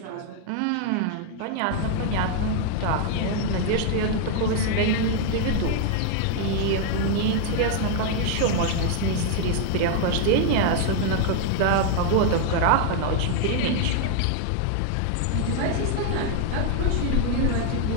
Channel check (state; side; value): different; both; correlation 0.00